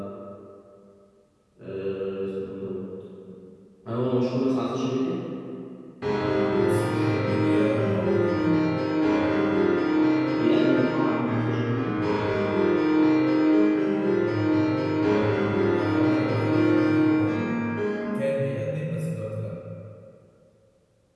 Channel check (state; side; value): identical; both; correlation 1.00